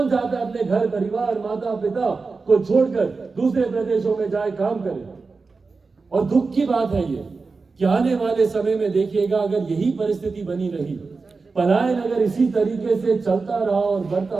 चाहता है अपने घर परिवार, माता पिता को छोड़कर दूसरे प्रदेशों में जाए काम करे? और दुख की बात है ये कि आने वाले समय में देखिएगा, अगर यही परिस्थिति बनी रही, पलायन अगर इसी तरीके से चलता रहा और बढ़ता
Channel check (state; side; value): quieter; left; 4.3 dB